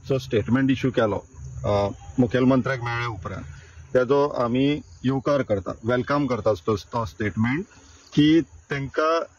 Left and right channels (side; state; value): both; identical; correlation 1.00